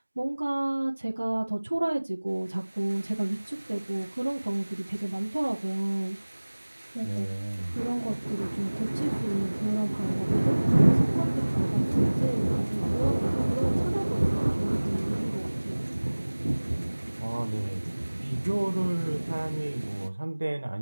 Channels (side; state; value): both; inverted; correlation -1.00